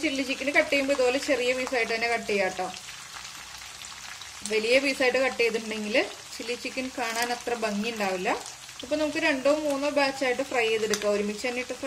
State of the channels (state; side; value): identical; both; correlation 1.00